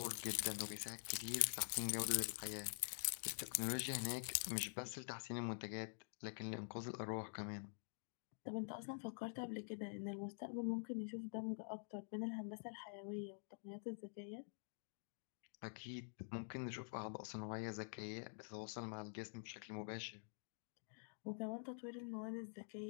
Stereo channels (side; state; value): right; silent; digital silence